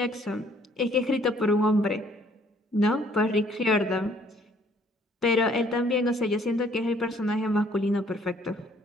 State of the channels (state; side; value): normal; both; correlation 0.61